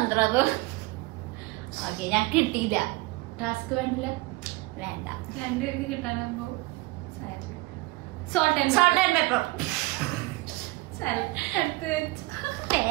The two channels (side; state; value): left; quieter; 22.4 dB